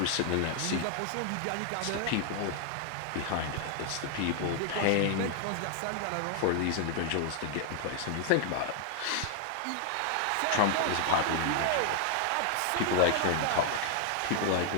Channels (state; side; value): different; both; correlation 0.00